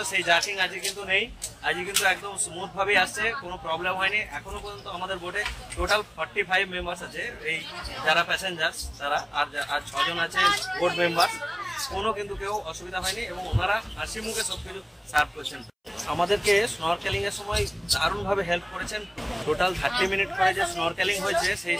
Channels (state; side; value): identical; both; correlation 1.00